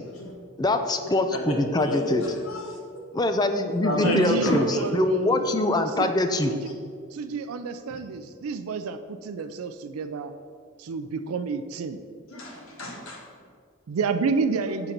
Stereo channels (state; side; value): normal; both; correlation 0.37